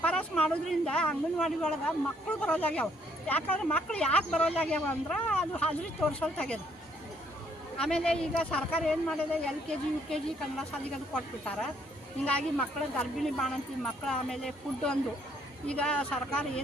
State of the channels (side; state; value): both; normal; correlation 0.68